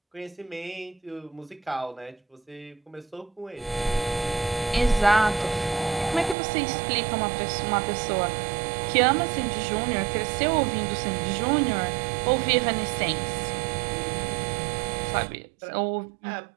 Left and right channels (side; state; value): left; drops out; at 6.4 s